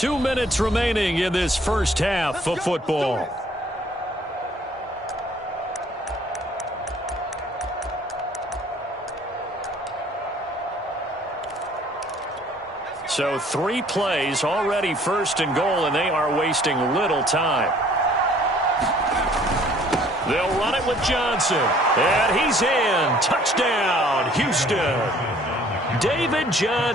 minutes remaining in this first half of football. So 3 plays, already 1st and goal, and they are wasting little time. They'll run it with Johnson. And he's in. Touchdown, Houston. David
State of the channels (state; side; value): normal; both; correlation 0.57